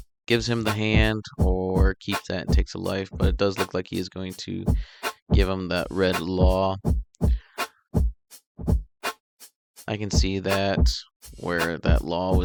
gives him the hand or keeps that and takes a life, but it does look like he is going to give him that red law. I can see that where that law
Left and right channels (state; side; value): identical; both; correlation 1.00